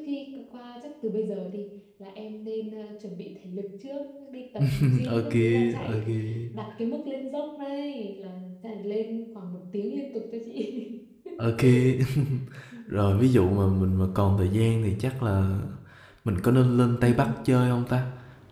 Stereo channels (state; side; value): identical; both; correlation 1.00